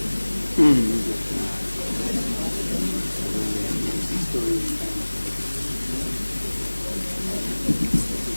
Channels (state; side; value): inverted; both; correlation -1.00